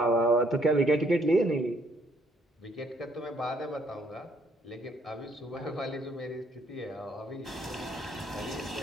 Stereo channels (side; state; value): both; normal; correlation 0.67